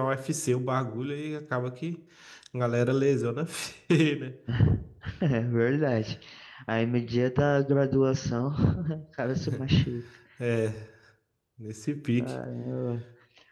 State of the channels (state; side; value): identical; both; correlation 1.00